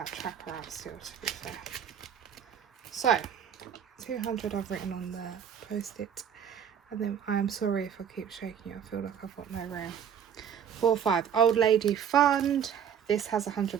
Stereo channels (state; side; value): quieter; left; 8.4 dB